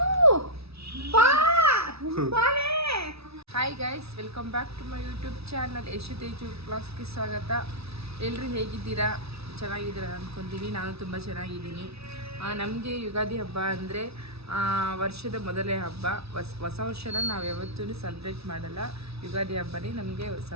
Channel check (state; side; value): late; left; 0.78 ms